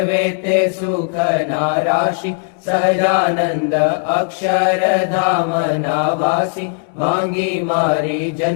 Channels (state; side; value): silent; right; 62 dB below the other